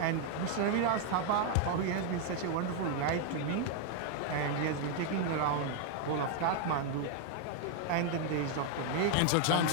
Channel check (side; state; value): both; different; correlation 0.00